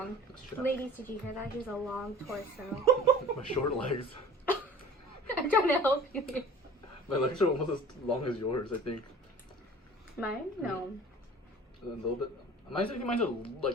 That's true. Ladies, did you hear that? He's a long torso. My short legs. I'm trying to help you here. My legs are almost as long as yours, I think. Mine? No. A little bit. Mine's are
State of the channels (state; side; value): normal; both; correlation 0.44